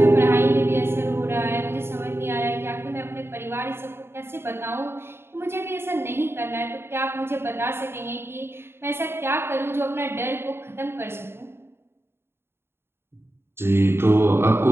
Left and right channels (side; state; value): left; late; 0.11 ms